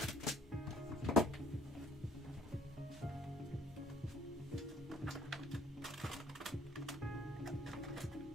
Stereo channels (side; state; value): both; normal; correlation 0.59